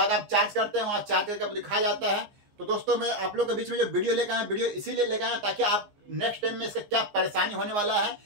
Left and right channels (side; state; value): left; late; 15 ms